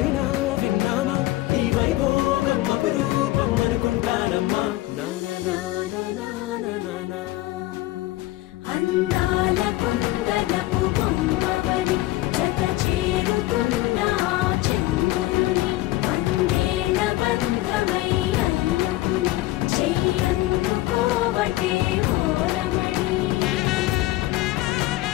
విన్నామా, ఈ వైభోగం అపురూపం అనుకుంటానమ్మా. అందాల కుందనపు బొమ్మవని జత చేరుతున్న చంద్రుని, వందేళ్ల బంధమై అల్లుకుని చెయ్యందుకోవటే ఓరమణి.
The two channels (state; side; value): quieter; right; 17.3 dB